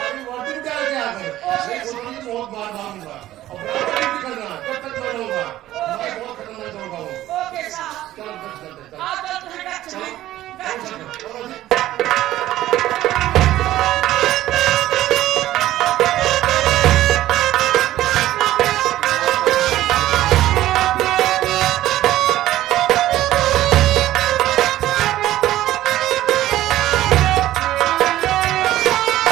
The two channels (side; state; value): left; quieter; 14.4 dB